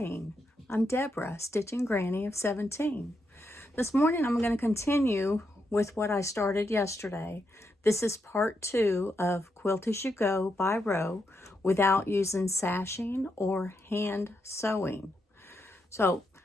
I'm Deborah, Stitching Granny of 17. This morning I'm going to continue with what I started yesterday. This is part 2 of Quilt as You Go by row without using sashing or hand sewing.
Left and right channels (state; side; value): normal; both; correlation 0.82